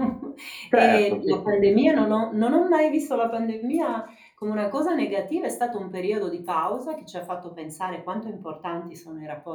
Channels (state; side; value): identical; both; correlation 1.00